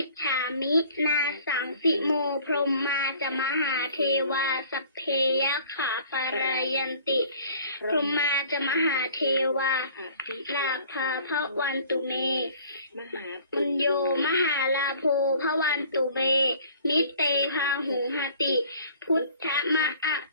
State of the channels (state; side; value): inverted; both; correlation -0.52